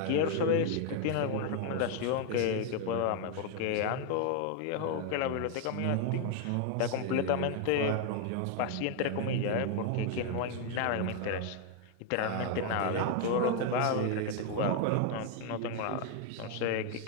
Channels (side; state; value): both; different; correlation 0.01